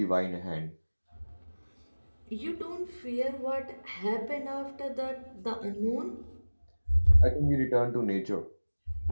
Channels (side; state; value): both; inverted; correlation -1.00